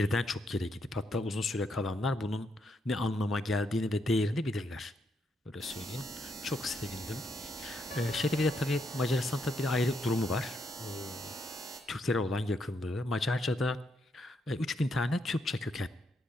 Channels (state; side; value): normal; both; correlation 0.78